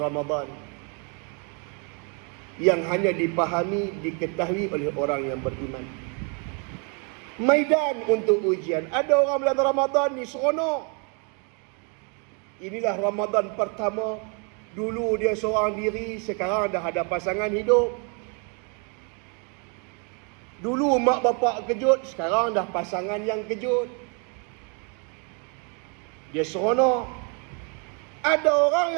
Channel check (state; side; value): quieter; left; 36.6 dB